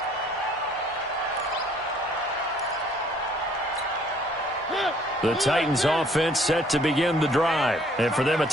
The Titans offense set to begin the drive. And for them, a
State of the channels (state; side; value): noise; right; hum, 30 dB below the sound